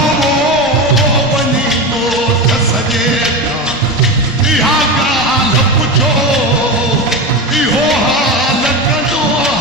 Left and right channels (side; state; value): both; normal; correlation 0.21